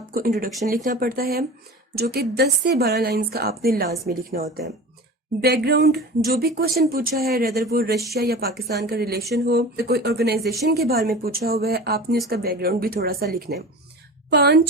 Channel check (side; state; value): both; normal; correlation 0.34